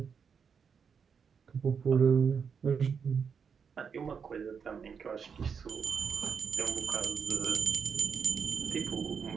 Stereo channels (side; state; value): left; quieter; 6.4 dB